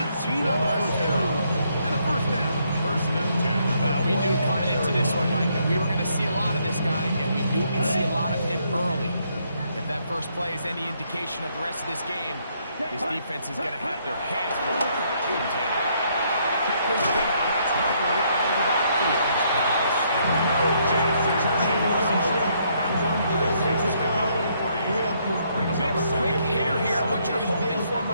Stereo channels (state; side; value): inverted; both; correlation -0.71